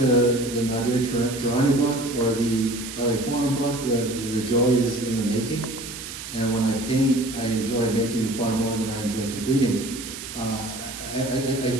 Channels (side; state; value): right; noise; hiss, 10 dB below the sound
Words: Nadir Tarini book or the LA Forum book, the joy is in the making. And when I paint, I enjoy making far more than I enjoy completing.